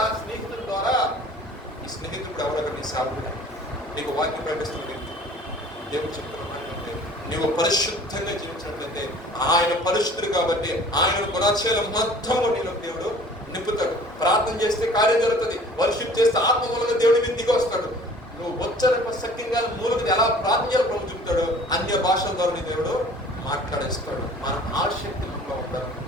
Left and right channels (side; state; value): both; normal; correlation 0.49